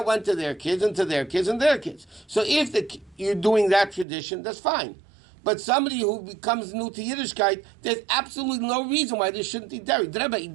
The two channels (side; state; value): left; drops out; at 4.0 s